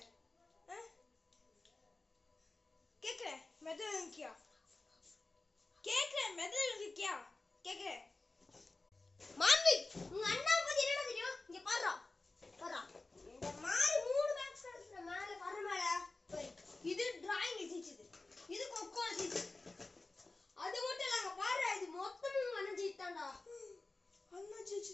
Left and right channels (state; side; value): quieter; right; 3.3 dB